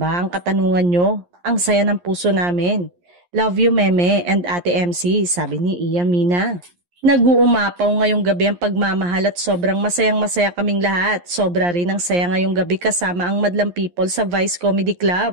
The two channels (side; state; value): left; late; 11 ms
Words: ang katanungan nyo? Ang saya ng puso namin. Love you Meme and Ate MC, sabi ni Iya Mina. Nag-uumapaw ngayong gabi ang pagmamahal at sobrang masayang-masaya kaming lahat. Sobra rin ang saya ngayong gabi kasama ang madlang people sa Vice Comedy